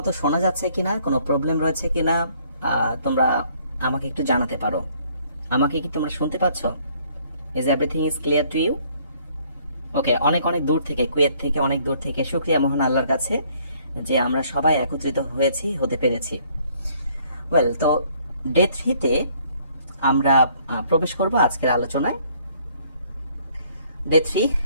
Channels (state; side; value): inverted; both; correlation -0.63